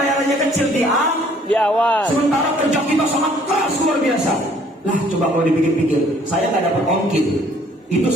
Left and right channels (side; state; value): both; normal; correlation 0.59